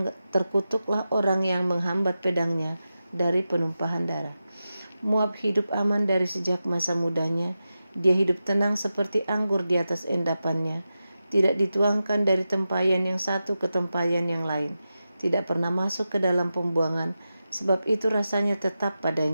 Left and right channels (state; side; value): inverted; both; correlation -0.91